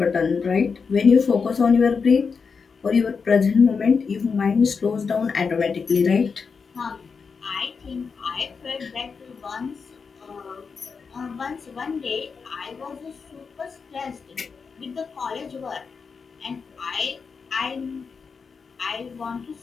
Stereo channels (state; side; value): quieter; right; 5.4 dB